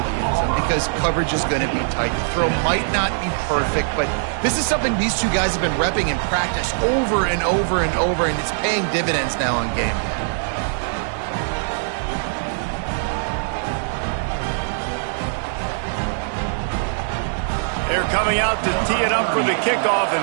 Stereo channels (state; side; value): silent; left; digital silence